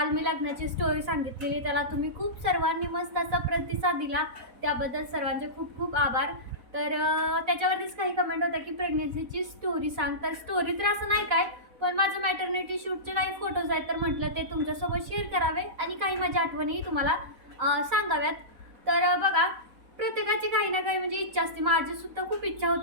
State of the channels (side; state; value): left; late; 4.0 ms